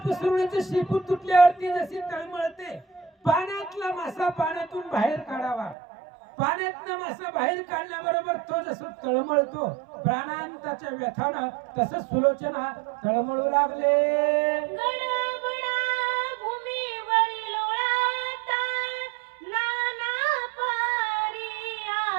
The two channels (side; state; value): left; drops out; at 5.8 s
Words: सुरळीचं शेपूट तुटल्यावरती जशी तळमळते. पाण्यातला मासा पाण्यातून बाहेर काढावा. पाण्यातनं मासा बाहेर काढल्याबरोबर तो जसं तळमळतो प्राणांताच्या व्यथानं, तसं सुलोचना तळमळू लागले. गडबडा भूमीवरी लोळाता नाना पारी